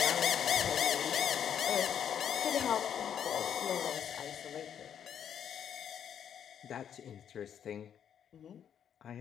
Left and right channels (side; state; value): right; quieter; 8.8 dB